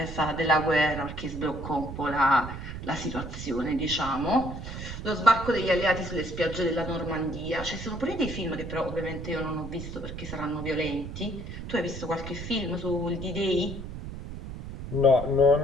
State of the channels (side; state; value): right; noise; rumble, 8 dB below the sound